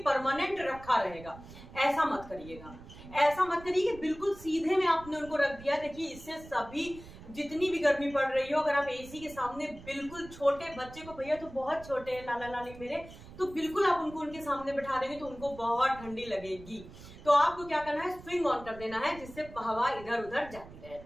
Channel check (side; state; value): right; noise; rumble, 17 dB below the sound